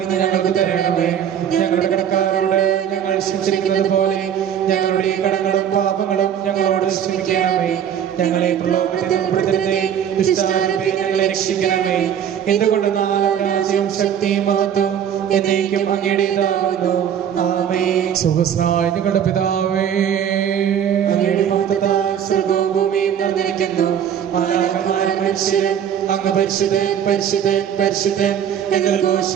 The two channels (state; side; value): quieter; left; 9.1 dB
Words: ഇന്ന് ഞങ്ങൾക്ക് തരണമേ. ഞങ്ങളുടെ കടക്കാരോട് ഞങ്ങൾ ക്ഷമിച്ചിരിക്കുന്നത് പോലെ ഞങ്ങളുടെ കടങ്ങളും പാപങ്ങളും ഞങ്ങളോട് ക്ഷമിക്കണമേ. ഞങ്ങളെ പ്രലോഭനത്തിൽ ഉൾപ്പെടുത്തരുതേ, ദുഷ്ടാരൂപേ ഞങ്ങളെ രക്ഷിക്കണമേ. എന്തുകൊണ്ടെന്നാൽ രാജ്യവും ശക്തിയും മഹത്വവും എന്നേക്കും അങ്ങയുടേതാകുന്നു. ആമേൻ. സ്വർഗ്ഗസ്ഥനായ ഞങ്ങളുടെ പിതാവേ, അങ്ങയുടെ മഹത്വത്താൽ സ്വർഗ്ഗവും ഭൂമിയും നിറഞ്ഞിരിക്കുന്നു. മാലാഖമാരും മനുഷ്യരും അങ്ങ് പരിശുദ്ധൻ പരിശുദ്ധൻ പരിശുദ്ധൻ എന്ന്